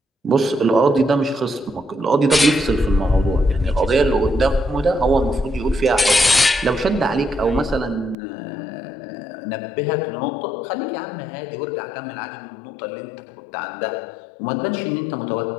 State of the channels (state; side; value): drops out; right; at 8.2 s